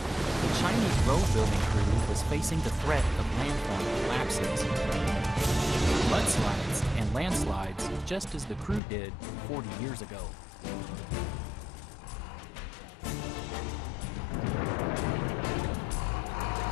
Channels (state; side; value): drops out; right; at 8.8 s